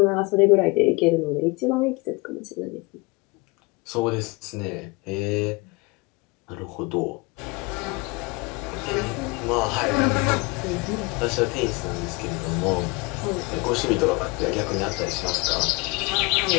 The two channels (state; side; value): quieter; right; 26.5 dB